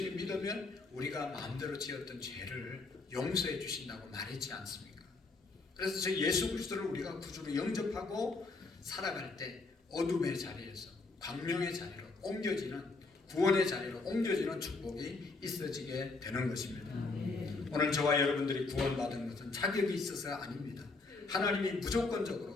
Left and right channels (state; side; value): quieter; right; 3.7 dB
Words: 믿으면 우리가 마음대로 지었던 죄를 용서해 주신다고 말했지 않습니까? 그래서 저 예수 그리스도를 우리가 구주로 영접하고 살아갈 때 어둠의 자리에서 광명의 자리로 옮겨지는 구원의 자리로 옮겨지는 축복이 있어지게 되는 것입니다. 오늘 저와 여러분들이 구원받은 것은 자격이 있어서가 아닙니다. 하나님이